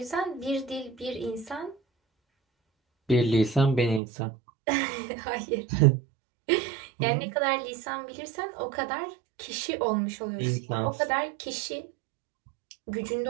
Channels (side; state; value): left; drops out; at 4.0 s